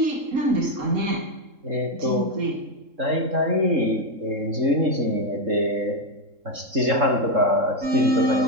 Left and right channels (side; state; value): left; late; 3.7 ms